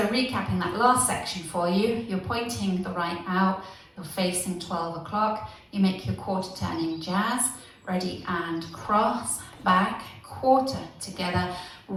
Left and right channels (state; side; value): identical; both; correlation 1.00